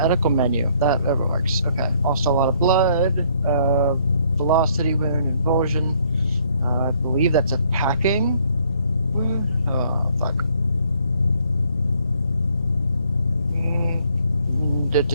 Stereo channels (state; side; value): inverted; both; correlation -0.65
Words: menu. That works. Okay. Lost a lot of blood. Velocity wound, involsion. I believe that's a packing wound. Oh, fuck.